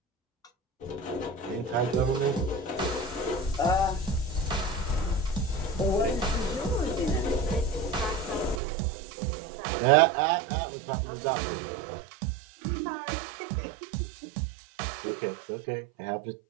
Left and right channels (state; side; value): drops out; left; at 8.6 s